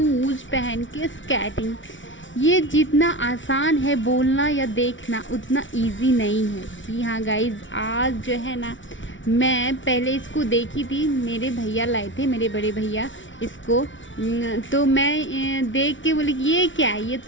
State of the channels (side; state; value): right; late; 0.56 ms